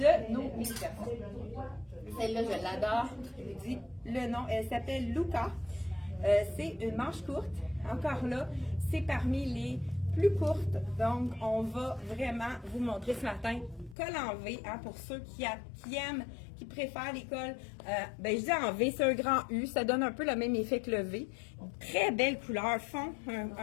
nos mini-personnes. Celle-là, je l'adore. Je vous dis le nom. Elle s'appelle Luca. C'est une manche courte. Encore là, c'est parmi les plus courtes. Donc, on va vraiment vous montrer ce matin col en V, hein, pour ceux qui aiment, qui préfèrent les cols. Je dis en V, c'est un grand U. Ça donne un peu le même effet que le V. Très belle couleur.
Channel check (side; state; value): right; drops out; at 14.0 s